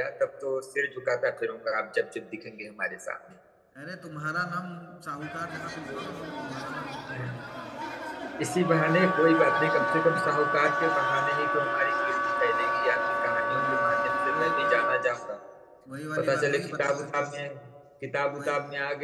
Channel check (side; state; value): both; identical; correlation 1.00